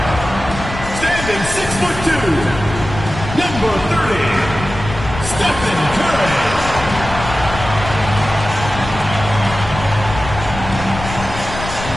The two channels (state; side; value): noise; left; rumble, 9 dB below the sound